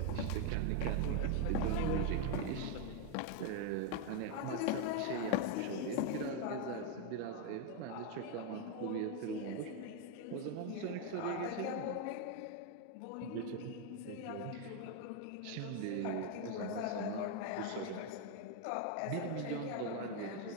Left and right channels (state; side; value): different; both; correlation 0.01